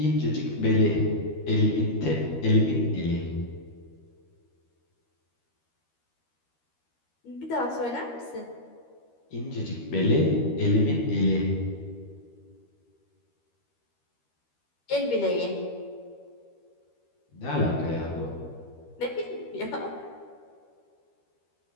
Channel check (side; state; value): right; late; 13 ms